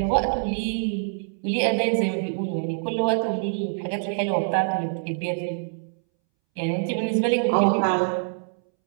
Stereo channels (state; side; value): silent; left; 62 dB below the other